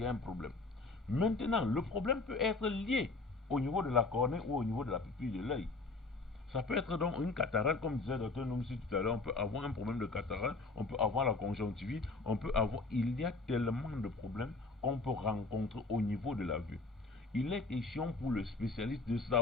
a un problème. Maintenant, le problème peut être lié au niveau de la cornée ou au niveau de la pupille de l'œil. Ça peut être donc une cataracte, comme disait le Dr Noumsi tout à l'heure, on peut avoir un problème de cataracte, on peut avoir la conjonctivite, on peut avoir... Il y a tellement de problèmes qu'on peut rencontrer au niveau de la vue. Il est question pour le spécialiste de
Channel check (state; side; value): quieter; right; 3.6 dB